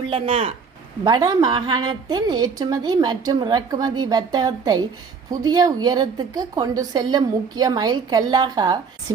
வட மாகாணத்தின் ஏற்றுமதி மற்றும் இறக்குமதி வர்த்தகத்தை புதிய உயரத்துக்கு கொண்டு செல்லும் முக்கிய மைல்கல்லாக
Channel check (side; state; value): left; quieter; 5.5 dB